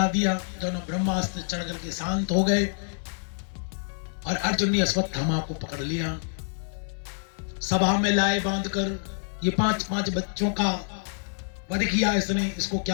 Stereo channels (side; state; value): right; silent; 60 dB below the other